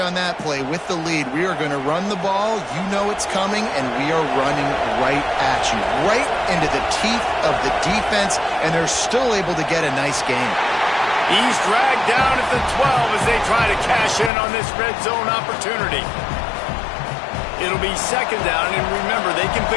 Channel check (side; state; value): right; drops out; at 14.3 s